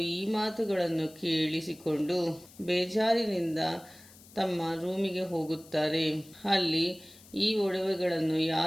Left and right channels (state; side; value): noise; left; hiss, 23 dB below the sound